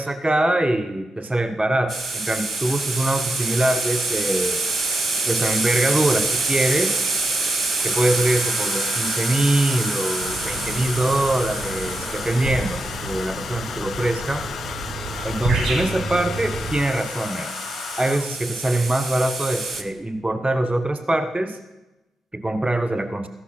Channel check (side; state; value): both; normal; correlation 0.88